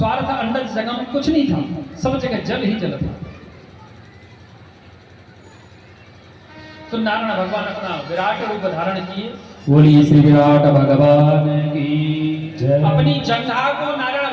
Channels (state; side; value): identical; both; correlation 1.00